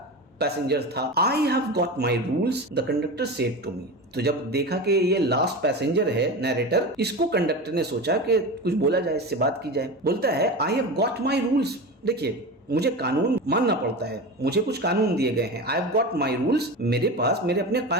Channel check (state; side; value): normal; both; correlation 0.26